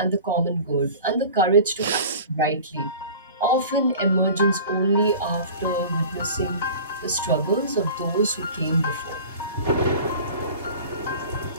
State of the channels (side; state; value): both; inverted; correlation -0.40